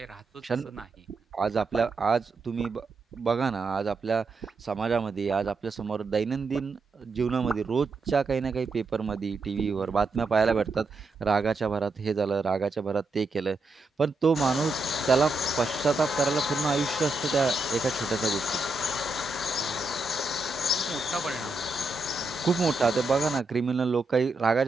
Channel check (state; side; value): quieter; left; 3.2 dB